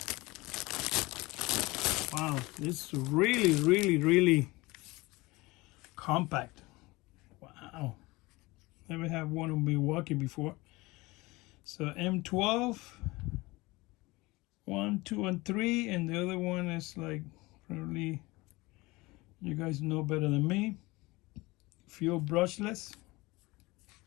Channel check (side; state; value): right; quieter; 22.1 dB